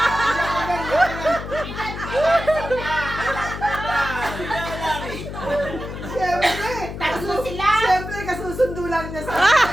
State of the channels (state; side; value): noise; left; hum, 8 dB below the sound